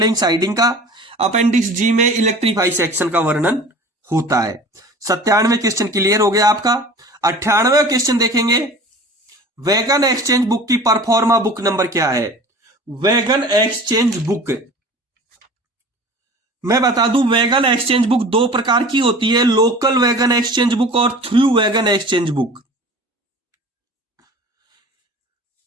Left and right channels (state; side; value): normal; both; correlation 0.41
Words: siding का, अपेंडिक्स जी में इलेक्ट्रीफाई सेक्शन का वर्णन होता है। 97वें क्वेश्चन क्लियर हो गया आपका। 98वें क्वेश्चन देखेंगे, वैगन एक्सचेंज बुक की परफॉर्मा बुक नंबर क्या है। वैगन एक्सचेंज बुक, मैं बता दूं वैगन एक्सचेंज बुक 2 प्रकार की होती है, लोकल वैगन एक्सचेंज बुक और through wagon exchange book.